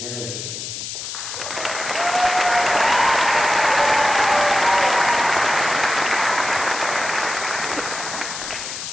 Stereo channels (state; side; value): noise; left; hiss, 7 dB below the sound